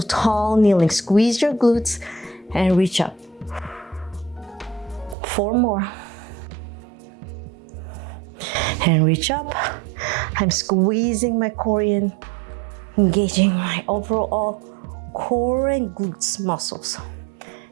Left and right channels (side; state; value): left; drops out; at 5.2 s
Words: tall kneeling. Squeeze your glutes and reach up. 4 more. And reach up. I'm squeezing my core in, engaging my overall core and glutes muscles